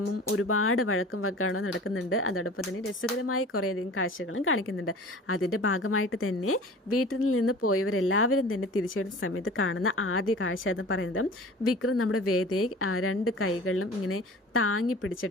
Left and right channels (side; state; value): both; normal; correlation 0.41